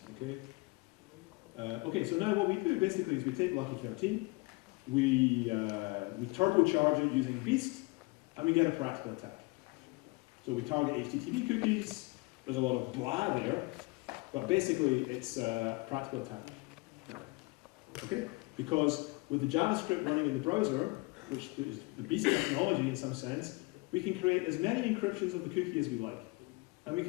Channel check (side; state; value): right; quieter; 26.4 dB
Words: Okay. Okay, so now what we do basically is we take Lucky 13, we turbocharge it using Beast, and we get a practical attack. So we target HTTP cookies. There's a lot of blah there, but basically it's a practical attack. Okay? Because with the JavaScript running in the browser, which is the Beast technology in some sense, we can create as many encryptions of the cookie as we like. And we